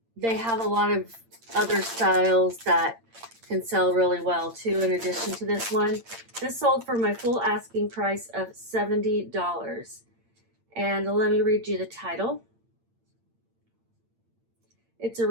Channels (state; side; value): late; left; 8.8 ms